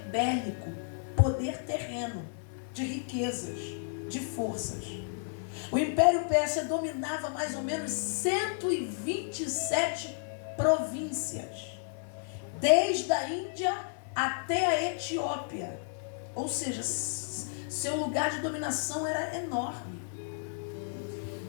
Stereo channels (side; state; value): right; silent; digital silence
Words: bélico, poder terreno, de riquezas, de forças. O Império Pérsia dominava mais ou menos 127 províncias, desde a Índia até a Etiópia. Ou seja, seu lugar de dominação era enorme.